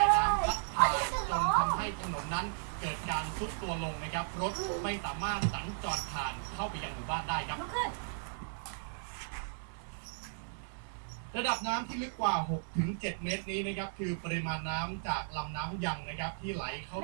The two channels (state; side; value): silent; left; 54 dB below the other